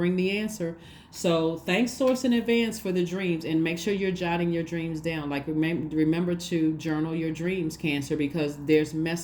the answer. So thanks, Source, in advance for the dreams, and make sure you're jotting your dreams down. Like remember to journal your dreams, Cancer, because there's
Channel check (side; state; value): both; identical; correlation 1.00